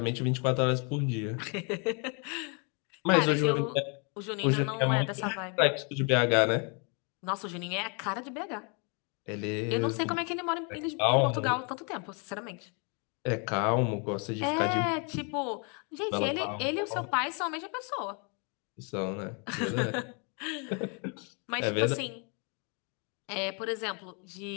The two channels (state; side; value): quieter; right; 35.7 dB